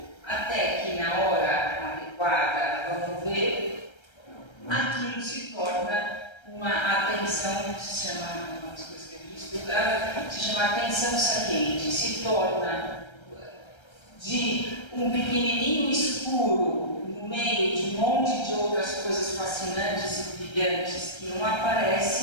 Até que na hora adequada, vamos ver, aquilo se torna uma atenção, que se chama, uma das coisas que a gente estuda, se chama atenção saliente, se torna de um pequenininho escuro no meio de um monte de outras coisas fascinantes e brilhantes que não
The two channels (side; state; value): right; late; 1.3 ms